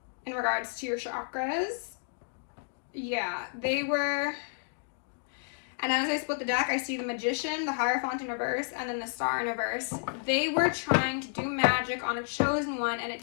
in regards to your chakras. Yeah, they were... And as I split the deck, I see the Magician, the Hierophant in reverse, and then the Star in reverse. They were trying to do magic on a chosen one, and it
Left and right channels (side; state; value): right; silent; digital silence